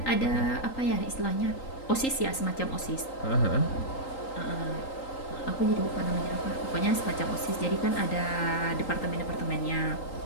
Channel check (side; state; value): right; late; 3.8 ms